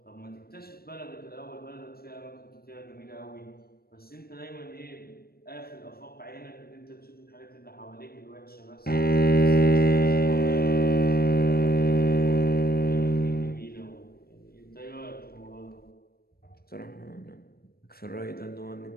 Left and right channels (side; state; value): right; late; 0.44 ms